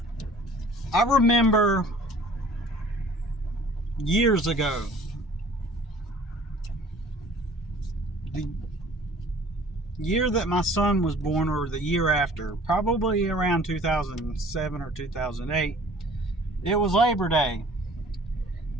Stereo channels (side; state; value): both; normal; correlation 0.50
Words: I remember years ago, the year that my son was born, or the year after, probably around 2007 or 2008, it was Labor Day.